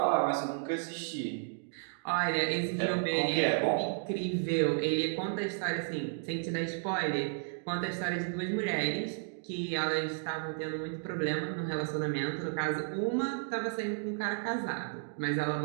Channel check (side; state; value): left; silent; digital silence